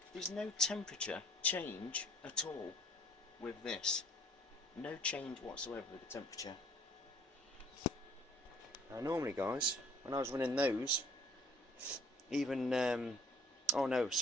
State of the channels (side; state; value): both; normal; correlation 0.57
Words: There's no temperature change at all with this. No change whatsoever with the temperature. Now normally guys, when I was running those, even oh no,